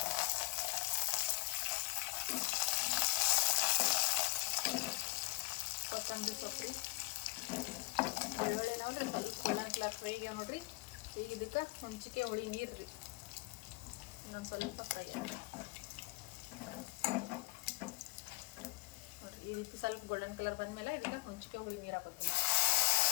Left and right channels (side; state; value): right; quieter; 24.6 dB